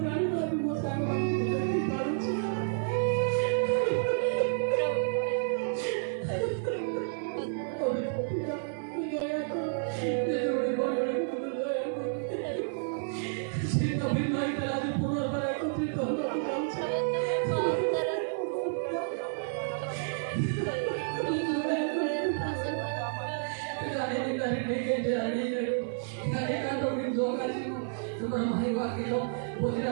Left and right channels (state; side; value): silent; left; 57 dB below the other